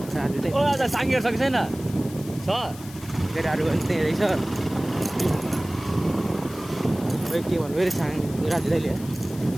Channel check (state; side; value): noise; left; hiss, 18 dB below the sound